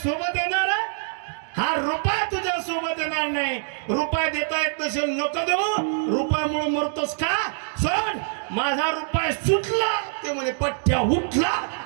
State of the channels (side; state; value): left; silent; digital silence